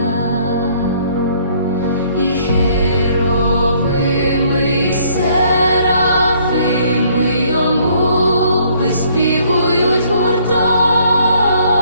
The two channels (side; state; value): both; inverted; correlation -0.63